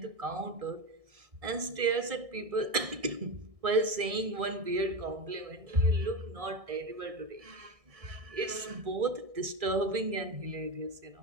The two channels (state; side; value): late; left; 1.6 ms